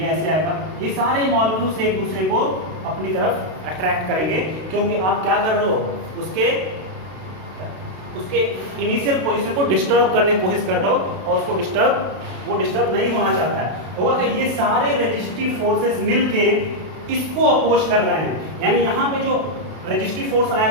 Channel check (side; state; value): left; late; 32 ms